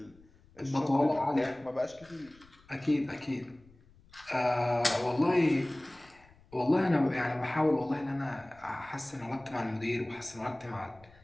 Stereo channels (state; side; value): noise; left; rumble, 27 dB below the sound